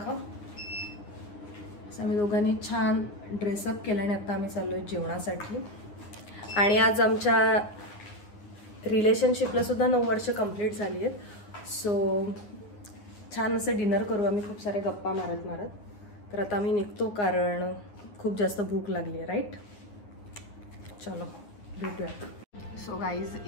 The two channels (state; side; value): late; right; 9.7 ms